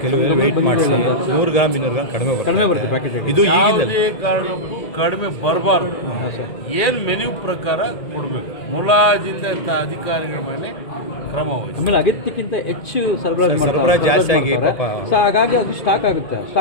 ಕೆಲವರು ವೇಟ್ ಮಾಡಿಸಿ 100 ಗ್ರಾಮ್ 200 ಗ್ರಾಮ್ ಕಡಿಮೆ ಬರುತ್ತೆ ಪ್ಯಾಕೆಟ್. ಇದು ಈಗಿಂದ ಯಾವುದೇ ಕಾರಣಕ್ಕೂ ಕಡಿಮೆ ಬರಬಾರ್ದು. ಏನು ಮೆನ್ಯೂ ಪ್ರಕಾರ ಕೊಡಬೇಕು. ಮುಲಾಜಿತ ಅಧಿಕಾರಿಗಳ ಮೇಲೆ ಕ್ರಮ ವಹಿಸಿ. ಆಮೇಲೆ ಅಗತ್ಯಕ್ಕಿಂತ ಹೆಚ್ಚು ಸರಬರಾಜು ಜಾಸ್ತಿ ಆಗಿ ಸೊ ಹಾಗಾಗಿ ಅದು ಸ್ಟಾಕ್ ಆಗುತ್ತೆ.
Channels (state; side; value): late; right; 1.8 ms